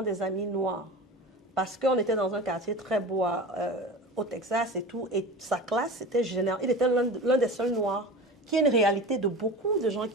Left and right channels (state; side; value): normal; both; correlation 0.32